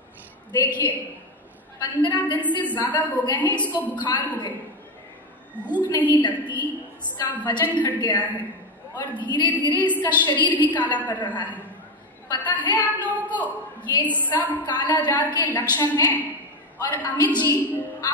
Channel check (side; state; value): both; normal; correlation 0.14